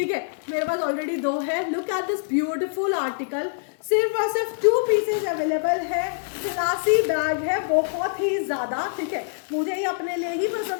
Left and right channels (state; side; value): silent; right; digital silence